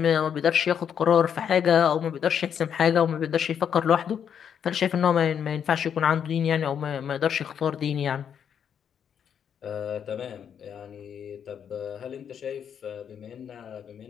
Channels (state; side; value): quieter; right; 8.1 dB